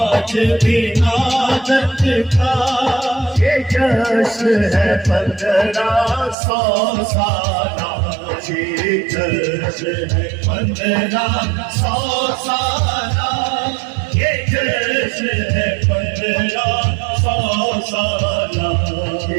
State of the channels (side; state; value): left; drops out; at 6.4 s